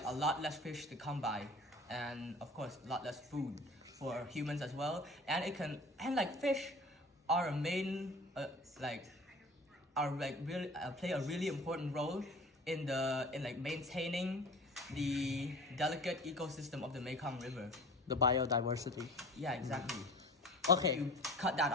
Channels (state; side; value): normal; both; correlation 0.41